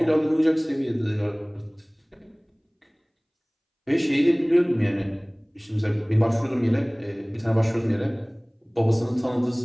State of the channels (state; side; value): identical; both; correlation 1.00